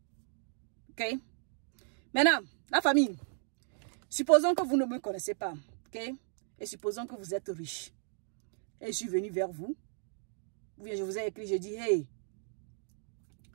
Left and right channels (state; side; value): silent; left; digital silence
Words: Ok? Maintenant, la famille, supposons que vous ne me connaissez pas, ok? Et supposons que vous êtes riche. Et je suis venu vers vous. Ou bien je vous ai écrit, je dis, hey,